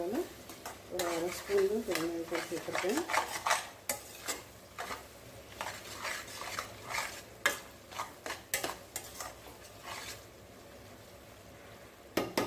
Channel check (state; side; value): identical; both; correlation 1.00